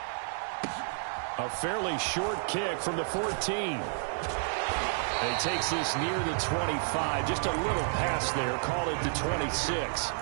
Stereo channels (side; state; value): left; silent; digital silence